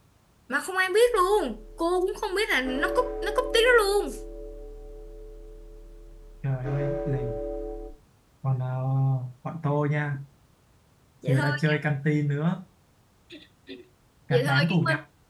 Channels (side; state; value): both; identical; correlation 1.00